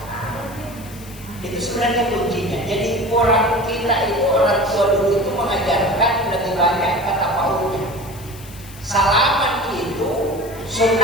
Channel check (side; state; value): left; noise; hiss, 19 dB below the sound